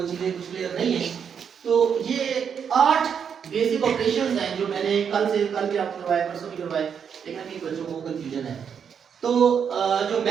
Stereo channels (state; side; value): quieter; left; 7.3 dB